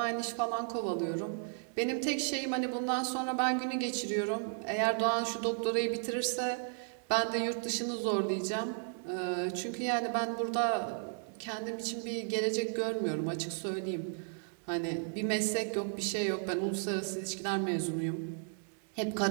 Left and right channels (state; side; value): silent; left; digital silence